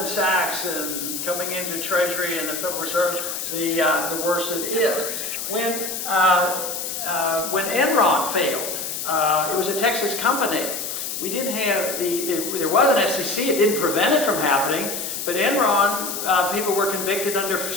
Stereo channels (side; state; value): left; noise; hiss, 5 dB below the sound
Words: Sachs and coming into Treasury and the Federal Reserve, the worse it is. When Enron failed, it was a Texas company. We didn't have there was an SEC. It didn't prevent it from happening. But Enron, people were convicted under